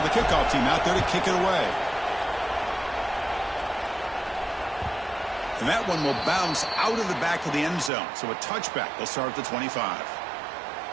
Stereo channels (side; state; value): left; drops out; at 7.9 s